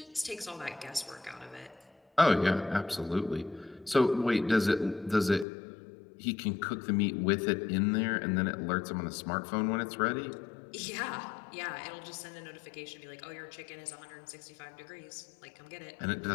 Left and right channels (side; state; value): right; drops out; at 5.5 s